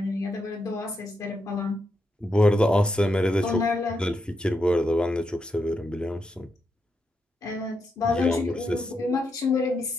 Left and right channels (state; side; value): normal; both; correlation 0.83